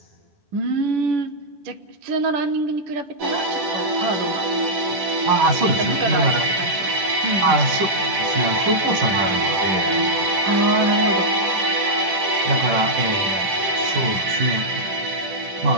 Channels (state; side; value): late; left; 10 ms